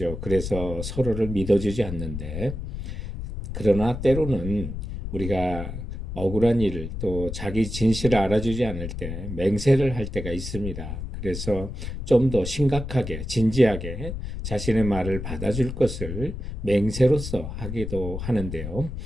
그래서 서로를 믿어주지 않는데, 그러나 때로는 우리가 억울한 일을 또 자기 진실을 알아주지 않을 때 맹세를 할 때가 있습니다. 그래서 좀 더 심각하게 진지하게 자신의 말을 받아줄 것을 맹세로서 하기도 하는데요.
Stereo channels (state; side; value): noise; left; rumble, 7 dB below the sound